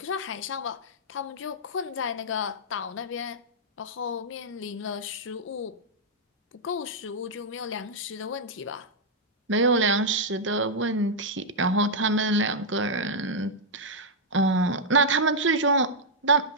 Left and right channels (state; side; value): normal; both; correlation -0.06